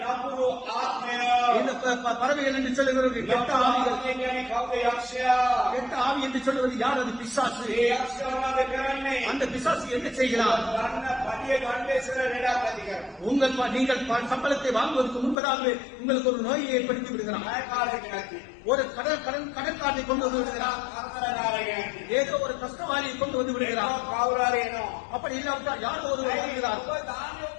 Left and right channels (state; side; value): drops out; right; at 15.4 s